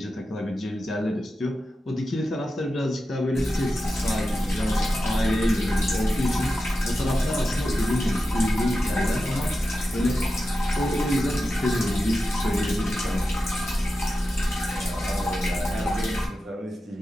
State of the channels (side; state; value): both; normal; correlation 0.91